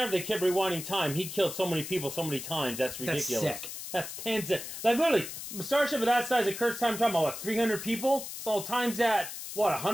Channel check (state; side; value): noise; left; hiss, 9 dB below the sound